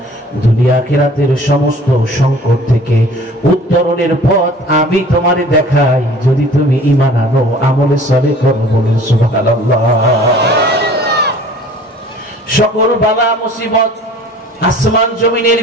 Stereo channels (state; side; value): normal; both; correlation 0.48